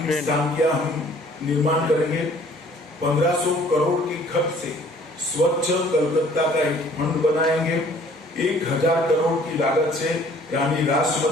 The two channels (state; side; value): normal; both; correlation 0.55